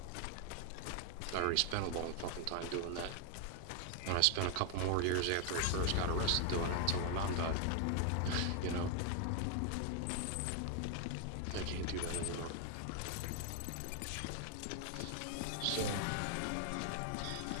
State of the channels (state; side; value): different; both; correlation 0.00